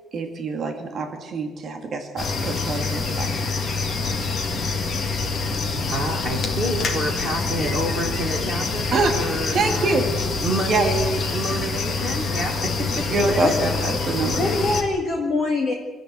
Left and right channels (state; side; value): normal; both; correlation 0.68